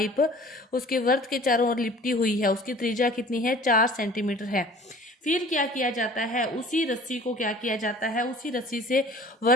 उसके वर्त के चारों ओर लिपटी हुई है, उसकी त्रिज्या कितनी है? 4 सेंटीमीटर है। फिर क्या किया जाता है? उसी रस्सी को क्या किया जाता है? उसी रस्सी से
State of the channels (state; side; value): normal; both; correlation 0.48